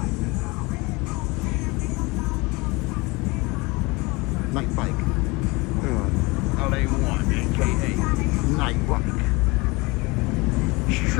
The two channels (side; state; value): right; quieter; 25.1 dB